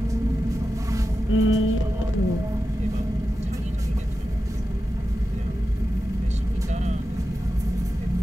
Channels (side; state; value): both; normal; correlation 0.92